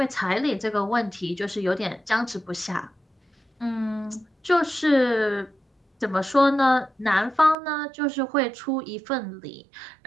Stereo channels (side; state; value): left; drops out; at 7.6 s